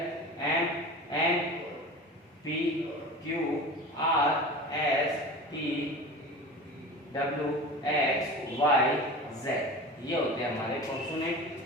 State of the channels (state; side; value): normal; both; correlation 0.34